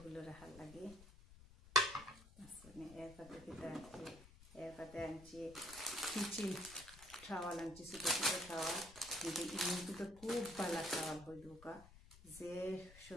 রাখার লাগে। এরপরে আনছি কিচেন টাওয়াল আনছি, ছোটো ছোটো টাওয়াল। কিন্তু ইমুকে তো খুব ভালো টাওয়াল হয়ে ঢোকা, যে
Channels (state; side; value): noise; left; rumble, 19 dB below the sound